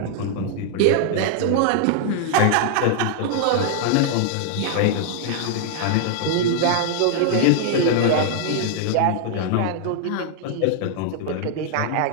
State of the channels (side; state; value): both; different; correlation 0.00